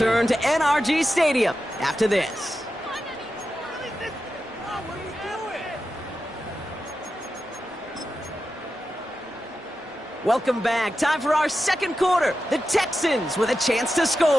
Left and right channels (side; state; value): both; normal; correlation 0.90